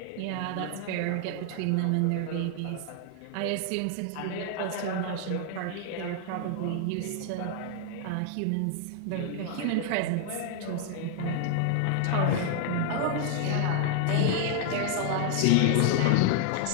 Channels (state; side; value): different; both; correlation 0.00